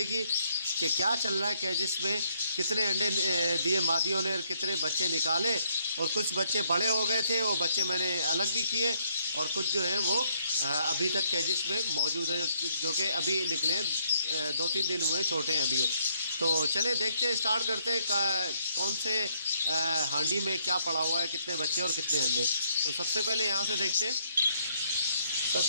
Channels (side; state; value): both; inverted; correlation -0.70